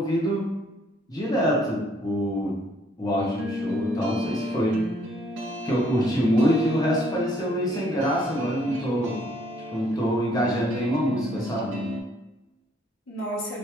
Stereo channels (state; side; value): normal; both; correlation 0.65